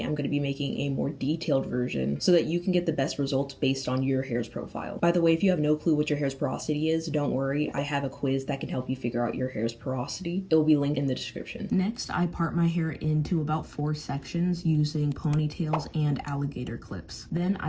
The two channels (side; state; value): both; identical; correlation 1.00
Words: I'm going to be making a more detailed version so that you can get the best results based on your hair's profile. By the way, if you have no clue what your hair's porosity is, don't worry, I have a quiz that can help you figure out your hair's porosity. It will be linked in the description. Next, I part my hair into about 4 sections using ponytails and alligator clips. Then